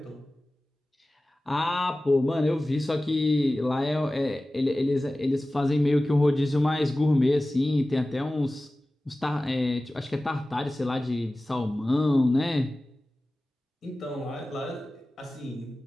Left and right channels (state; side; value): normal; both; correlation 0.96